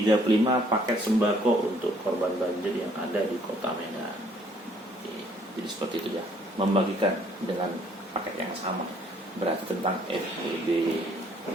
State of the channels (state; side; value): normal; both; correlation 0.62